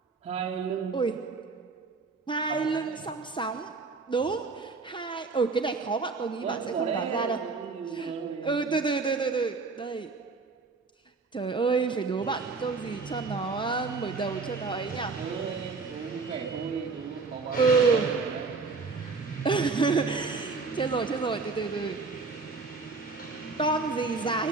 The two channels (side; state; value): left; quieter; 4.3 dB